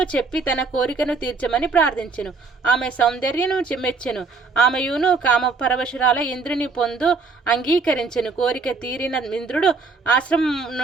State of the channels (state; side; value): quieter; left; 4.2 dB